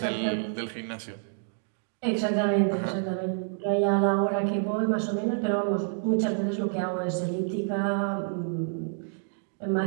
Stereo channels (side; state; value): left; silent; digital silence